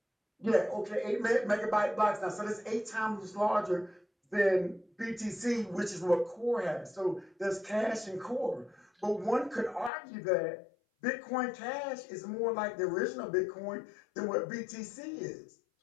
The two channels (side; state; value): right; drops out; at 9.9 s